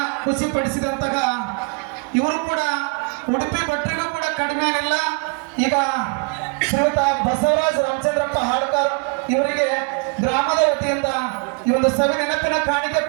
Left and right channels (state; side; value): quieter; left; 33.8 dB